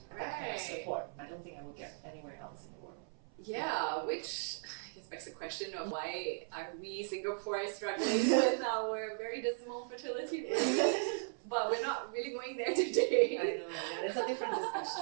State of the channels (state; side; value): silent; left; 53 dB below the other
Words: That kind of support. I don't think I would get anywhere else in the world. Yeah, which I guess begs the question of why are we Singaporeans struggling with our very dismal fertility rate? But we're not really going there today. I know, yeah, it's a different